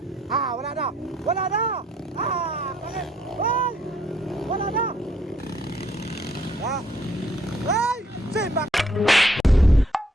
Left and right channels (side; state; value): both; normal; correlation 0.68